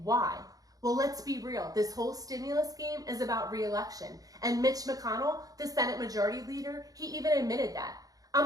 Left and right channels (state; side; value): late; left; 0.18 ms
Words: why? Well, let's be real. This whole stimulus game is about re-election. And Mitch McConnell, the Senate Majority Leader, he even admitted that. I'm